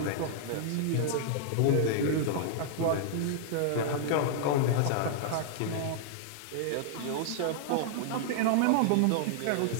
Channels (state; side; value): different; both; correlation -0.01